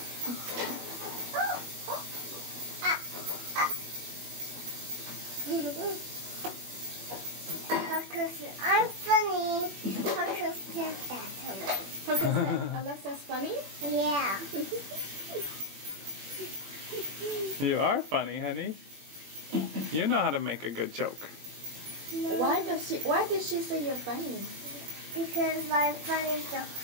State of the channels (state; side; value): late; left; 20 ms